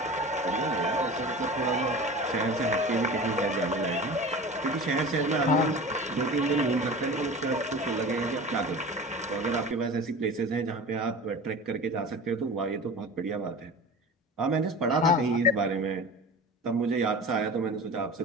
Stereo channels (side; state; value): both; normal; correlation 0.35